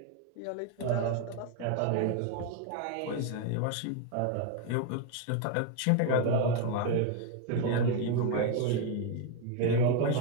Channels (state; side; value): different; both; correlation 0.01